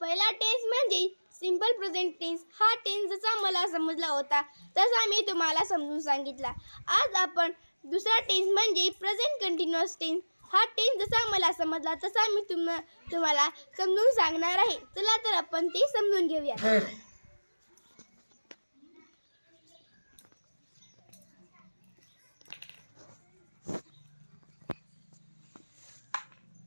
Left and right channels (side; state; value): both; inverted; correlation -1.00